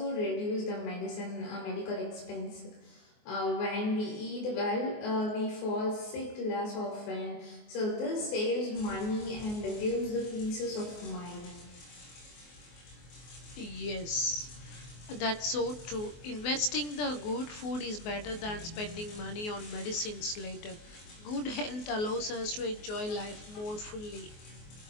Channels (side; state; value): right; late; 24 ms